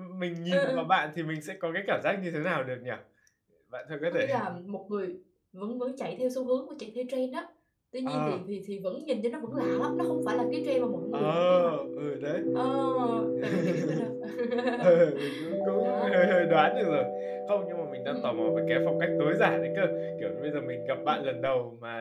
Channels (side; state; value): both; identical; correlation 1.00